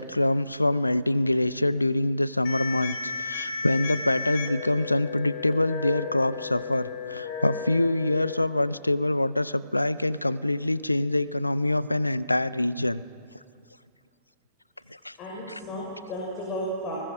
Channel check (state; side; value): inverted; both; correlation -0.91